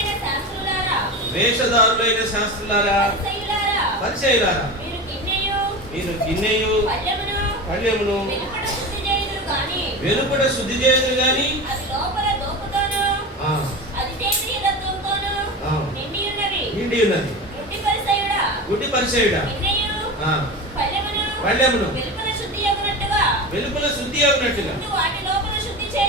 శాస్త్రులారా, పరిసయ్యులారా, మీరు గిన్నెయు పళ్ళెమును వెలుపట శుద్ధి చేయదు గాని నిండి ఉన్నది. గుడ్డి పరిసయ్యుడా, పళ్ళెమును వెలుపల శుద్ధి అగునట్టుగా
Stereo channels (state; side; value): normal; both; correlation 0.27